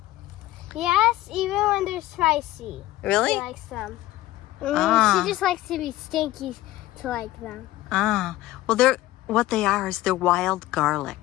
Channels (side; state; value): right; quieter; 16.3 dB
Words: Yes, even when they're spicy. Really? She likes them. Ah. She just likes to be stinky to like them. Ah, well, what they are is they're wild